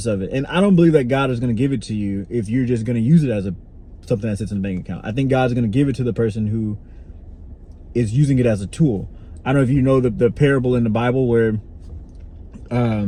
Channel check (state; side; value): identical; both; correlation 1.00